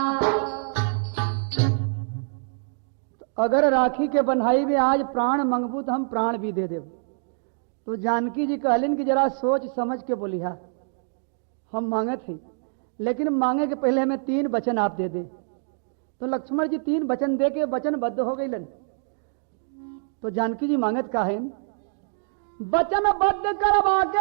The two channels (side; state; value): left; silent; digital silence